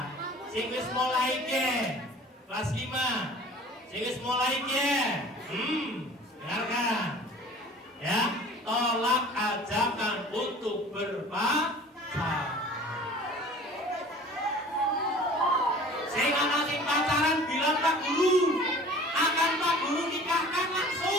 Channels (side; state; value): both; normal; correlation 0.45